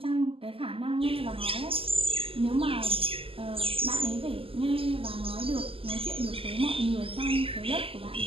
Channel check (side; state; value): left; late; 0.27 ms